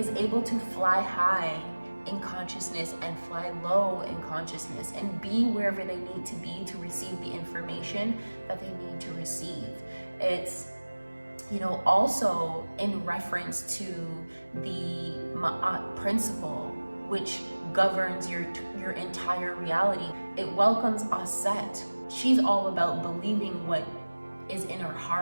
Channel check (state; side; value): inverted; both; correlation -1.00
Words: able to fly high in consciousness and fly low in consciousness and be wherever they need to be to receive the information that they need to receive. It's, you know, also in reference to the Ma'at principle, which governs your entire reality. It welcomes Aset. She's all about believing what is in her